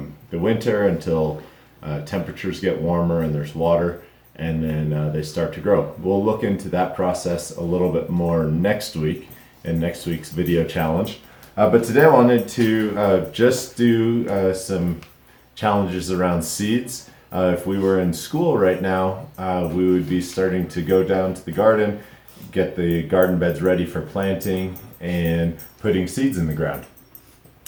the winter until temperatures get warmer and there's water, and then they start to grow. We'll look into that process a little bit more next week in next week's video challenge. But today I wanted to just do some challenges around seeds. If we were in school right now, we would be starting to go down to the garden, get the garden beds ready for planting and putting seeds in the ground.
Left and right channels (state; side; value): identical; both; correlation 1.00